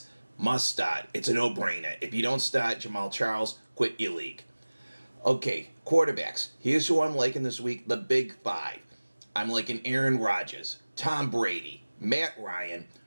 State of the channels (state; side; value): inverted; both; correlation -1.00